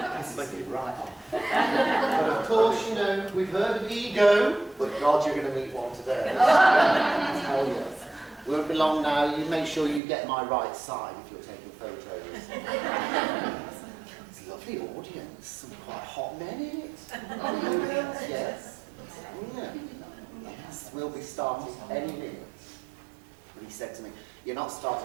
Right on. But of course, you know, we've heard of ego, but God, you're going to meet one today. Hell yes. Won't be long now. You make sure you get my right side if you're taking photos. It's a lovely audience. Some quite hot men in it. Yes. Yeah. Yes. We'll be starting any minute. But he said to me, "You're not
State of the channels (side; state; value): left; drops out; at 10.0 s